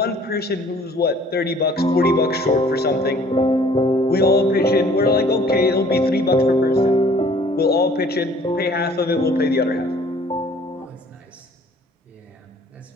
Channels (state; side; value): normal; both; correlation 0.55